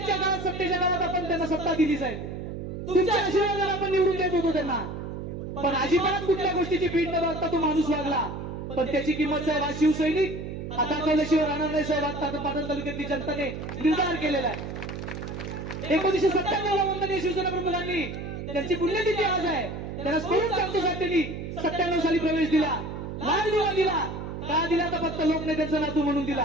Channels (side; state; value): right; noise; hum, 7 dB below the sound